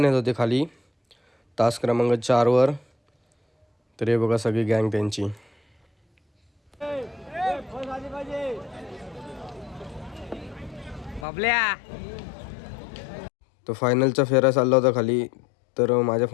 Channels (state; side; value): drops out; right; at 11.2 s